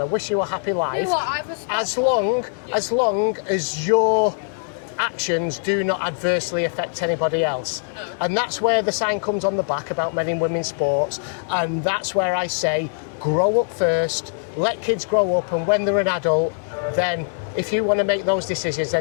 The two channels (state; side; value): silent; right; digital silence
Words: I wish you a happy life. You know what, I respect as long as your actions do not adversely affect anybody else. No. And that's where the sign comes on the back about men and women's sports, and that's where I say grow up first, let kids grow up, and when they're an adult, then if you want to make those decisions,